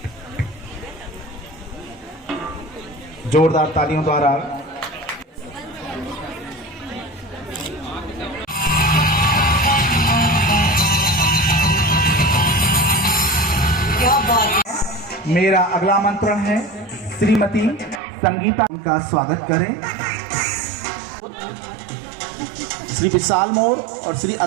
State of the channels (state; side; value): drops out; left; at 18.0 s